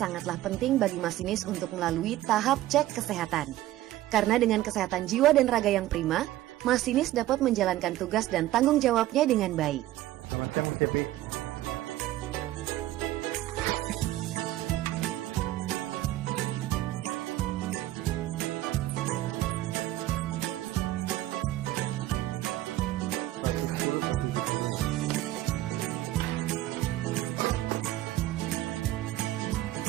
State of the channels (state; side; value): quieter; left; 14.9 dB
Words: penting bagi masinis untuk melalui tahap cek kesehatan. Karena dengan kesehatan jiwa dan raga yang prima, masinis dapat menjalankan tugas dan tanggung jawabnya dengan baik. Selamat siang, Mas Cepi.